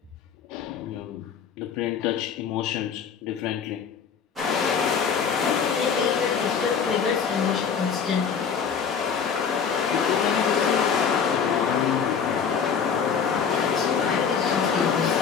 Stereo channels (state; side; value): quieter; right; 6.7 dB